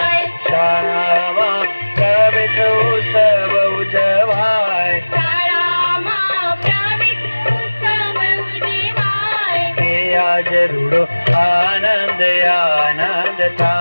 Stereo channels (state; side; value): inverted; both; correlation -1.00